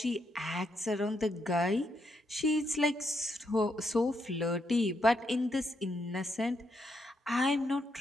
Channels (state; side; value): normal; both; correlation 0.79